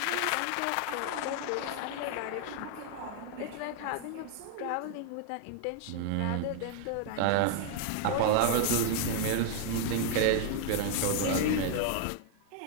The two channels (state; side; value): different; both; correlation 0.00